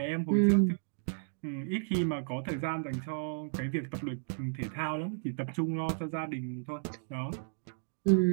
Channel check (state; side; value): silent; left; digital silence